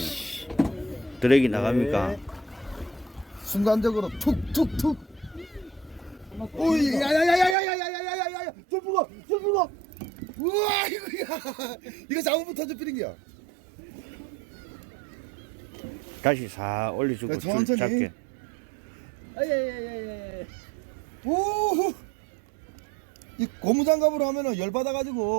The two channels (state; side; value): drops out; left; at 7.6 s